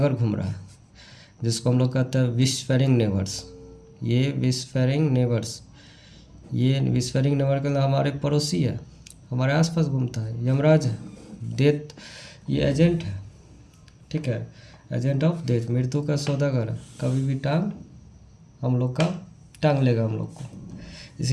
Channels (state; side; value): identical; both; correlation 1.00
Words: घूम रहा है, जिसको हम लोग कहते हैं विशफेरिंग नेबर्स। ये विशफेरिंग नेबर्स, ये विशफेरिंग नेबर के हमारे पड़ोसी है, हमारे आसपास घूमता है, यमराज है। डेथ ये एजेंट है, ठीक है, एजेंट ऑफ डेथ, मृत्यु का सौदागर है, कभी भी हम लोग का टांग लेगा हम लोग को,